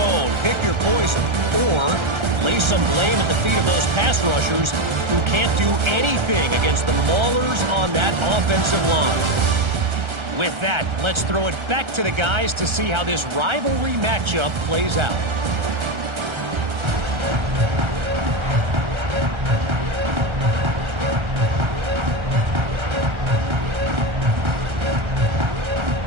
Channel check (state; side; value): late; left; 1.3 ms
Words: pick your poison, or lay some blame at the feet of those pass rushers who can't do anything against the maulers on that offensive line. With that, let's throw it back to the guys to see how this rivalry matchup plays out.